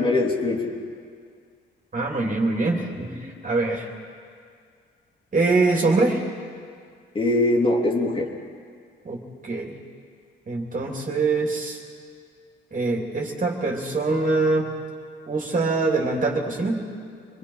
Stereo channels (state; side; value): normal; both; correlation 0.61